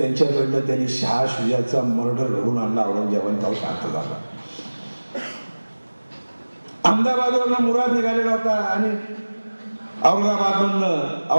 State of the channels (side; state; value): both; inverted; correlation -1.00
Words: त्यांनी शाह शुजाचा मर्डर घडून आणला. औरंगजेबाने तो शांत झाला. अहमदाबादवरनं मुराद निघालेला होता आणि औरंगाबादमधनं